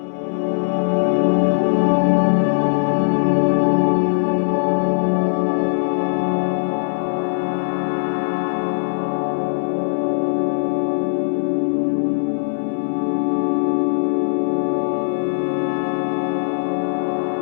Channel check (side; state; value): right; silent; 60 dB below the other